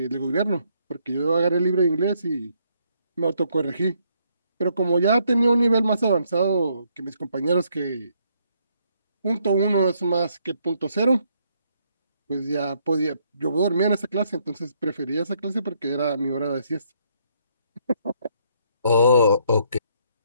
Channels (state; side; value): inverted; both; correlation -0.71